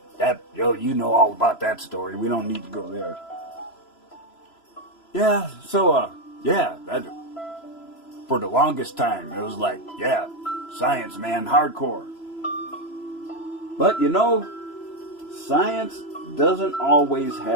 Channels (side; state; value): right; late; 3.0 ms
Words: you know all about that story. We don't need to go there. Yeah, so, for the longest time, it was like, yeah, science, man, hardcore. But, science doesn't always